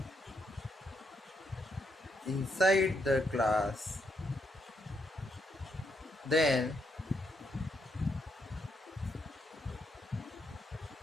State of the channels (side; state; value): both; normal; correlation 0.78